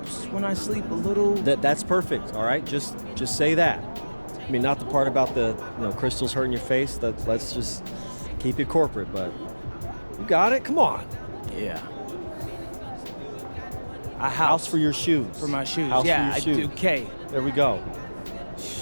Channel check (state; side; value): inverted; both; correlation -1.00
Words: when I sleep a little. That's perfect. All right, just say that. I mean, not the part about the crystals hurting your face. Let's just keep it corporate. But you got it. Come on. Yeah. A house for your shoes. For my shoes. House yeah, for your shoes. I do. Okay. There we go.